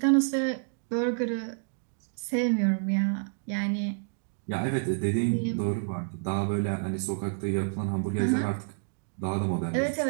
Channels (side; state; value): left; silent; digital silence